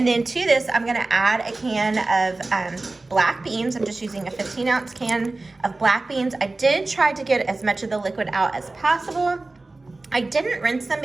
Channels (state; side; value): quieter; left; 3.2 dB